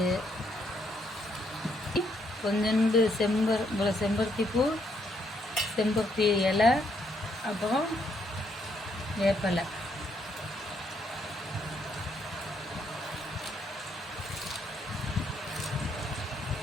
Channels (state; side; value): normal; both; correlation 0.73